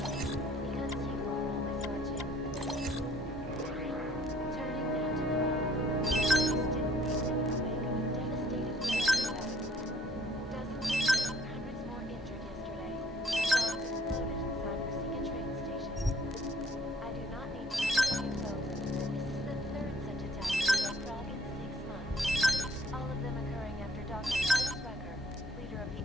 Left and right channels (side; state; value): both; normal; correlation 0.56